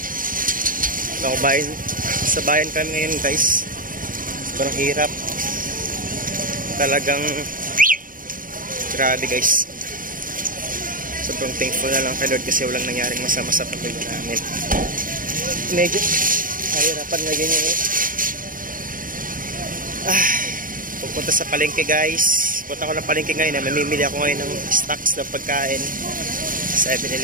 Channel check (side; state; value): left; late; 0.40 ms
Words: Sa bayan kami ngayon guys. Sobrang hirap. Talagang grabe guys. Sobrang thankful na lang kay Lord kasi walang nangyaring masama sa pamilya namin. Medyo kahirapan na ganyan eh. Pupunta sa palengke guys. Punta ko ng palengke ngayon. Mamimili ako ngayon ng stocks ng pagkain.